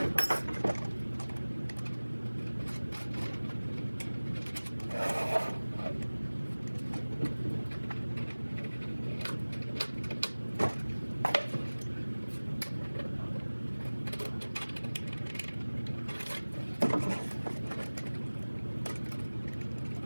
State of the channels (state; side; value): inverted; both; correlation -1.00